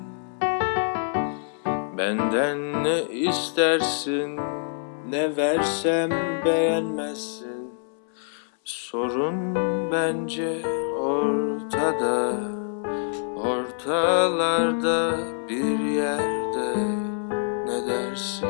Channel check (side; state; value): right; silent; 61 dB below the other